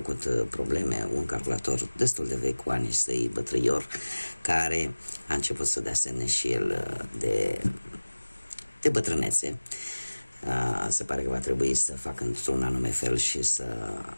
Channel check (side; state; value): both; inverted; correlation -1.00